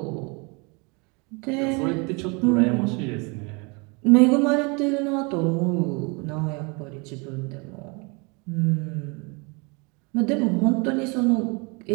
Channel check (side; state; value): left; quieter; 30.5 dB